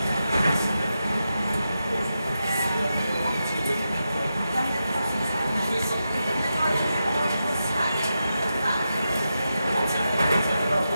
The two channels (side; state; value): both; inverted; correlation -0.89